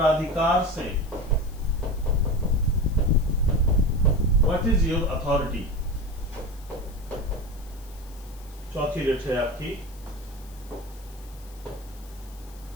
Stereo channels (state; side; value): noise; left; hiss, 23 dB below the sound